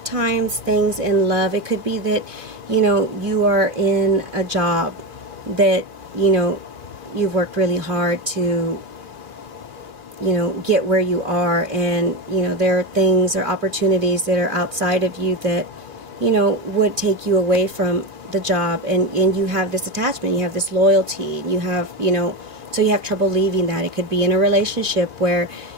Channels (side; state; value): left; late; 2.6 ms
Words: times things in love, it could be that, you are in a job that, you've worked really hard to, get where you are, and, there are things or opportunities that are outside of you that, would take you away from the job, and you have this attachment, you have this loyalty, you have, so you have trouble leaving that. It could be in a relationship where,